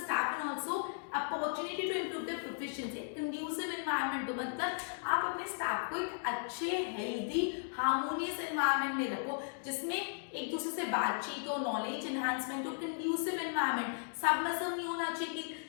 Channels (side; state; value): right; silent; digital silence